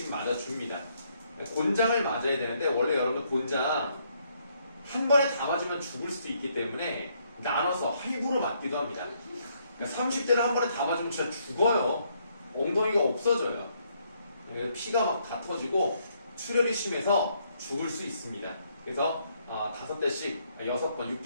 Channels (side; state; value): both; inverted; correlation -0.71